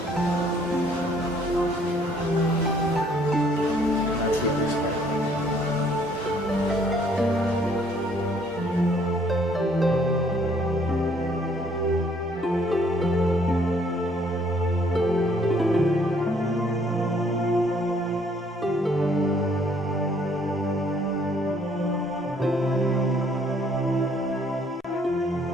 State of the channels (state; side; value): normal; both; correlation 0.63